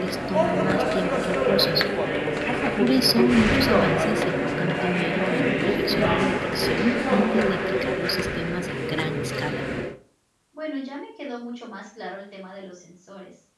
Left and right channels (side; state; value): both; identical; correlation 1.00